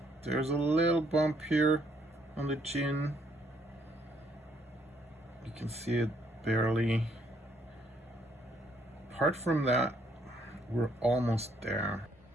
there's a little bump here on the chin. You can see it barely. Apart from that, we're almost there.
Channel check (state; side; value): normal; both; correlation 0.70